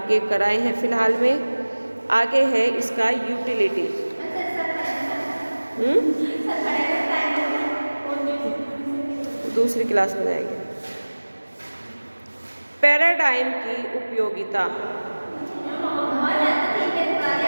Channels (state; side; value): inverted; both; correlation -1.00